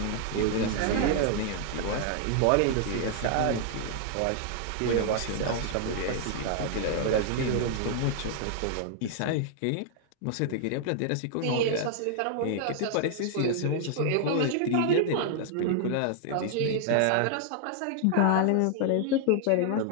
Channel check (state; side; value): different; both; correlation -0.01